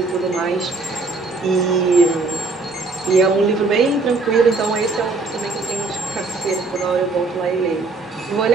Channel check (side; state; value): left; quieter; 3.7 dB